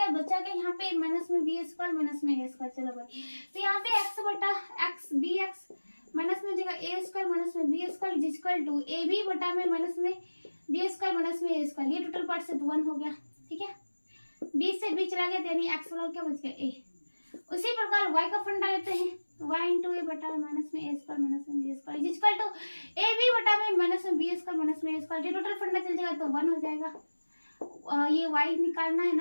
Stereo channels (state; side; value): inverted; both; correlation -1.00